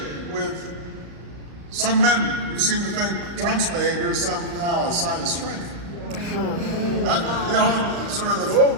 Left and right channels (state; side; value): late; left; 35 ms